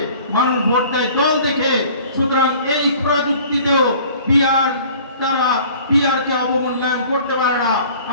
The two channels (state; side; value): inverted; both; correlation -0.49